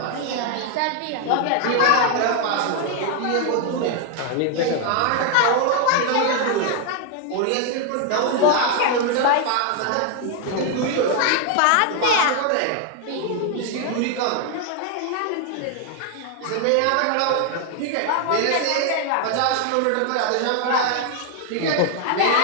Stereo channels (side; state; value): both; different; correlation 0.00